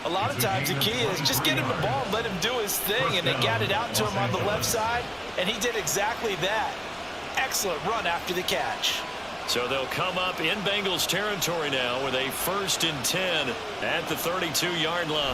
A lot of times the key is just get him the ball and let him do his thing, and they got it out to him on the left side, and he did exactly that. Excellent run after the catch. So they'll come up in Bengals territory now with a 1st and 10 at the 32-yard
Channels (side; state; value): both; identical; correlation 1.00